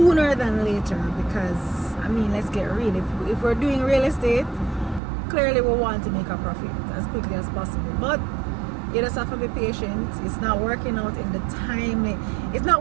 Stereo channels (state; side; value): drops out; left; at 5.0 s